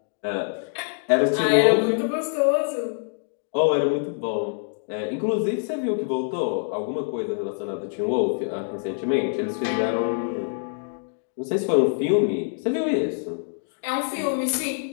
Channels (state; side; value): silent; right; digital silence